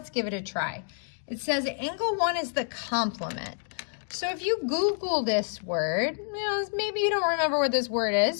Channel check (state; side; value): silent; right; 59 dB below the other